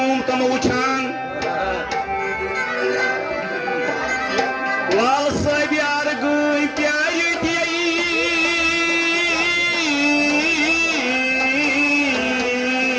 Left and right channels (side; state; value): both; identical; correlation 1.00